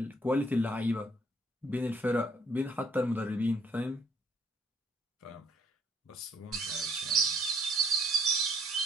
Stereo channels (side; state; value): both; normal; correlation 0.64